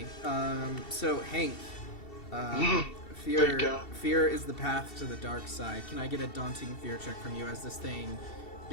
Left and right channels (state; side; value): late; right; 2.7 ms